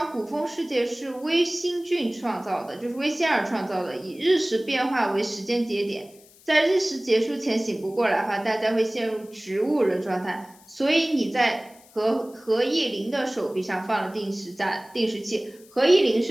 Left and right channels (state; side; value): noise; left; hiss, 26 dB below the sound